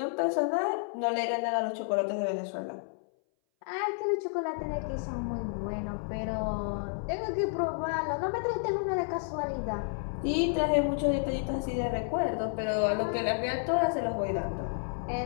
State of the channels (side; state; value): right; silent; 57 dB below the other